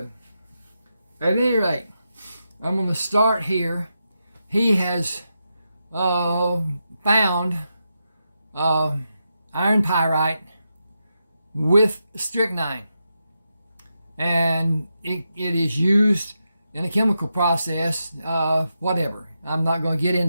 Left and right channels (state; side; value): inverted; both; correlation -0.86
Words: At any rate, I'm going to start here. He has found iron pyrite with strychnine, and it is used in a chemical process, whatever. I'm not going to get